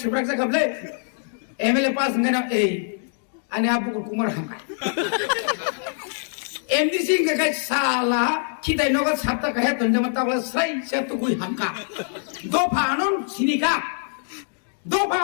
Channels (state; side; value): silent; right; digital silence